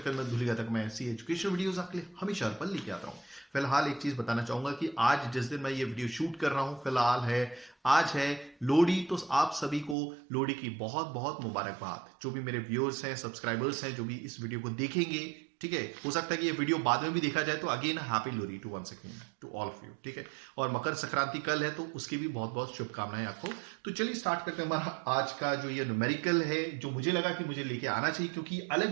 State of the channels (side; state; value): left; drops out; at 10.0 s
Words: करना मत भूलिएगा, तक मैं ऐसी एजुकेशन वीडियोस आपके लिए हमेशा पर लेके आता हूँ। फिलहाल एक चीज बताना चाहूंगा कि आज जिस दिन मैं ये वीडियो शूट कर रहा हूं, फिलहाल है आज है लोहड़ी। तो आप सभी को लोहड़ी की बहुत बहुत मुबारकबाद। जो भी मेरे व्यूअर्स हैं, सब्सक्राइबर्स हैं, जो भी इस वीडियो को देखेंगे, ठीक है, हो सकता है कि ये वीडियो बाद में भी देखा जाए, तो again happy Lohri to once again to all of you. ठीक है, और मकर संक्रांति कल है तो उसकी भी बहुत बहुत शुभकामनाएं आपको। तो चलिए स्टार्ट करते हैं हमारा आज का जो ये न्यूमेरिकल है, जो मुझे लगा कि मुझे लेके आना चाहिए, क्योंकि